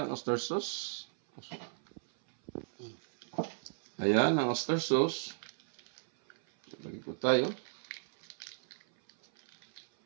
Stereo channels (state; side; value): silent; left; 55 dB below the other